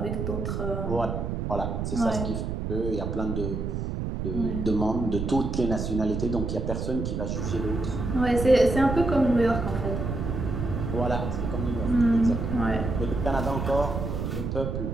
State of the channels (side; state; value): right; noise; rumble, 3 dB below the sound